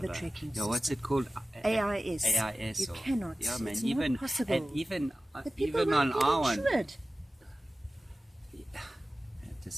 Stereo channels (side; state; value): both; normal; correlation 0.94